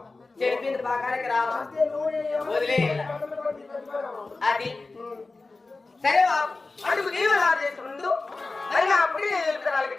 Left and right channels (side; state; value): right; quieter; 3.6 dB